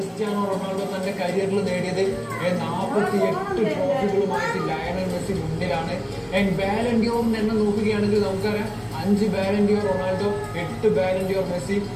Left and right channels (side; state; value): both; identical; correlation 1.00